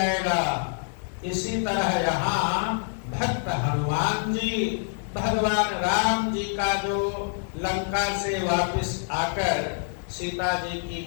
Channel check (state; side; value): silent; right; digital silence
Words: इसी तरह यहाँ भक्त हनुमान जी भगवान राम जी का जो लंका से वापस आकर सीता जी